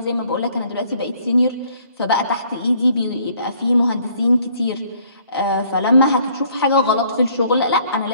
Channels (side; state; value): both; inverted; correlation -0.62